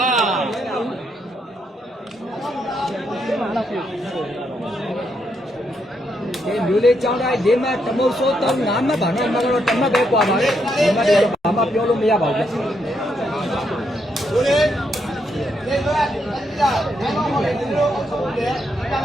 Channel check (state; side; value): normal; both; correlation 0.78